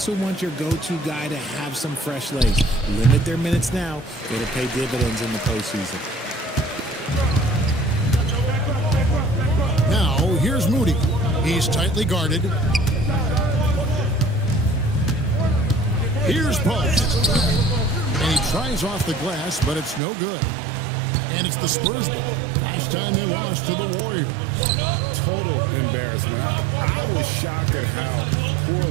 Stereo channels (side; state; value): left; drops out; at 20.0 s